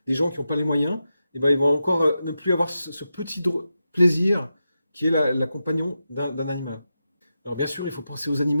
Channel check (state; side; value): inverted; both; correlation -0.89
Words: des gens qui n'ont pas les moyens. Et ben, ils vont encore ne plus avoir ce petit plaisir qui est la compagnon d'un animal. Alors bien sûr, il faut penser aux